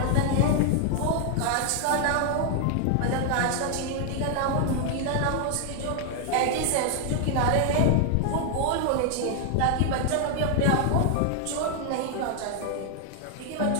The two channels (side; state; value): both; different; correlation 0.00